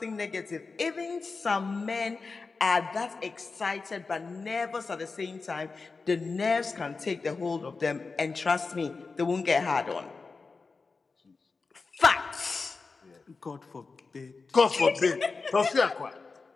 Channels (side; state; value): right; quieter; 4.3 dB